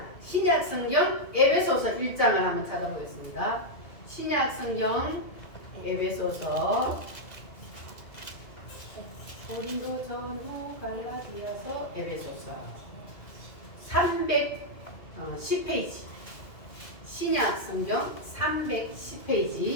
신약 성경 에베소서 1장을 한번 찾아보겠습니다. 신약 성경 에베소서, 고린도전후, 갈라디아서, 에베소서 310페이지. 신약 성경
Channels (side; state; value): right; late; 2.4 ms